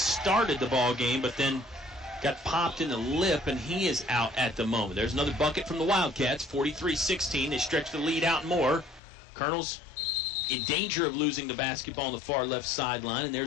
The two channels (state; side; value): drops out; right; at 9.0 s